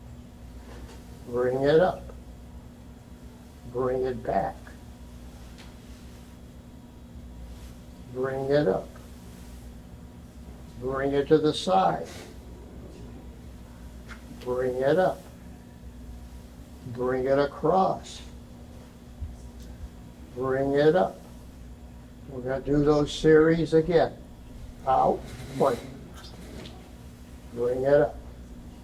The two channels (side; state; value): both; identical; correlation 1.00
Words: Bring it up. Bring it back. Bring it up. Bring it to the side. Bring it up. Bring it across. Bring it up. We're going to do those series again. Out, point. Bring it up.